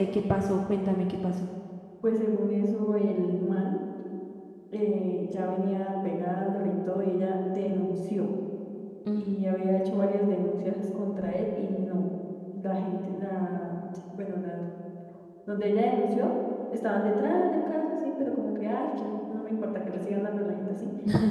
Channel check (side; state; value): both; identical; correlation 1.00